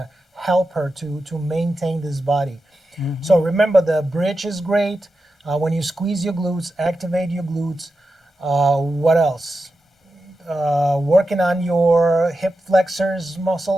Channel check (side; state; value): both; normal; correlation 0.90